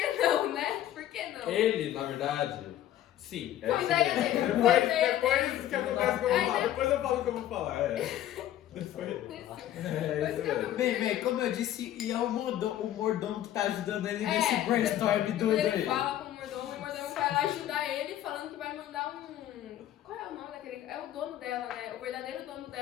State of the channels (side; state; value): right; quieter; 12.4 dB